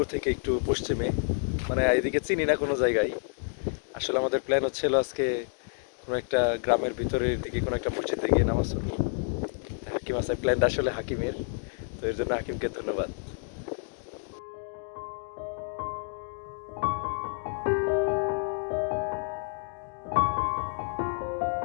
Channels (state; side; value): silent; right; 58 dB below the other